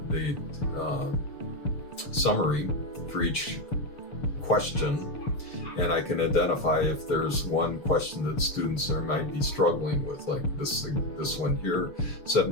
summary for each question, and I can identify if there's one question that students might be struggling with, like this one here.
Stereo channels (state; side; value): late; right; 6.8 ms